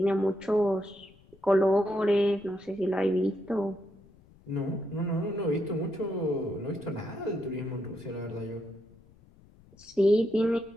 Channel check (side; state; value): left; noise; rumble, 26 dB below the sound